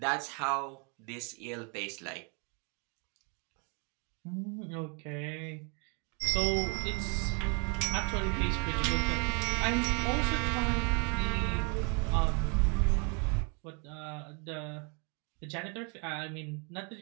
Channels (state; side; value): quieter; left; 35.6 dB